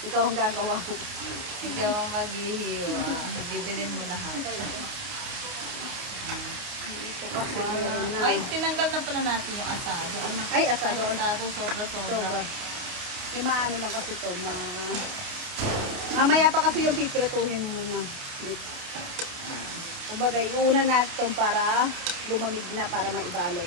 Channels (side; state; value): left; late; 29 ms